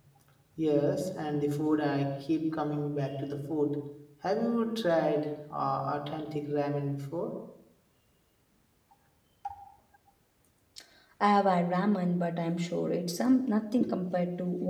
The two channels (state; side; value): identical; both; correlation 1.00